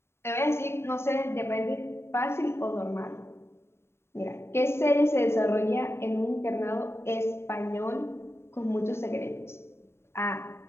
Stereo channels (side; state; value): right; late; 0.12 ms